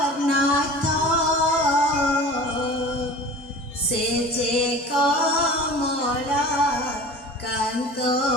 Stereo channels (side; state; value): both; normal; correlation 0.39